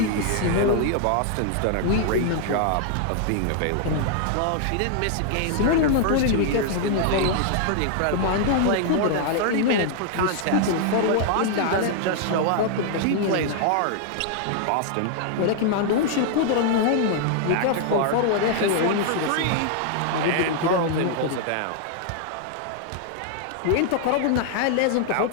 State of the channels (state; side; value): different; both; correlation 0.00